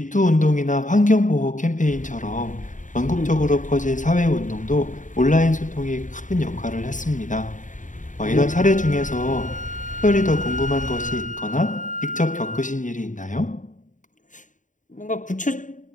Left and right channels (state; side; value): late; right; 0.37 ms